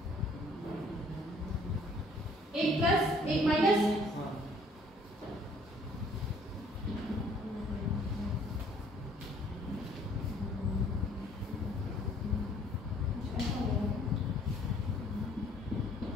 एक प्लस एक माइनस,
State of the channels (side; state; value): both; normal; correlation 0.59